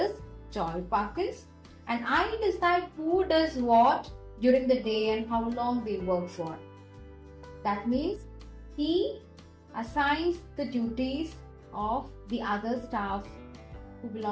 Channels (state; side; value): identical; both; correlation 1.00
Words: Joy Parkins, and I decide who does what during the day and how long they work for. That means he assigns the duties of the other staff who